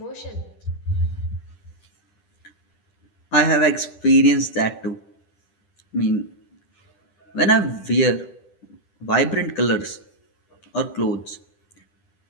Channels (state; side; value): late; right; 10 ms